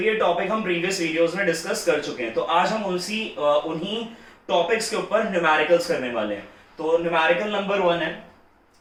ये टॉपिक हम प्रीवियस वीडियोस में डिस्कस कर चुके हैं। तो आज हम उन्हीं टॉपिक्स के ऊपर न्यूमेरिकल्स करने वाले हैं। तो न्यूमेरिकल नंबर 1 है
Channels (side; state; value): both; identical; correlation 1.00